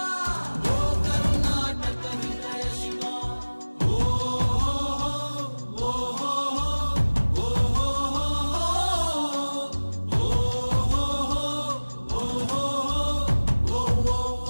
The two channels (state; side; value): inverted; both; correlation -1.00